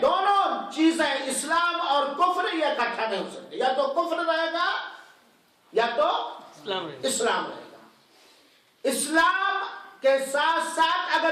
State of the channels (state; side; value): identical; both; correlation 1.00